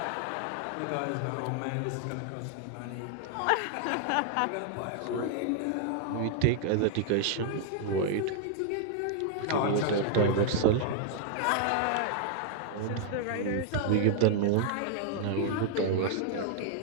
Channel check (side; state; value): both; different; correlation 0.00